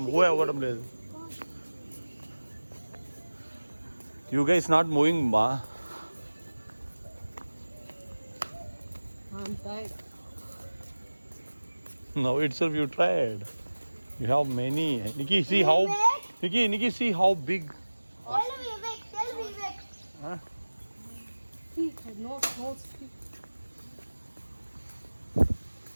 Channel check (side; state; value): both; inverted; correlation -1.00